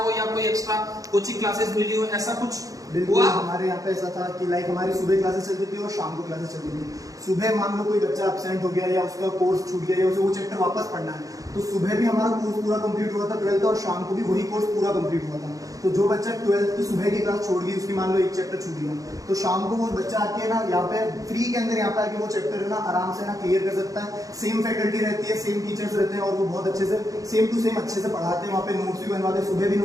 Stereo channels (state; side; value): late; left; 0.17 ms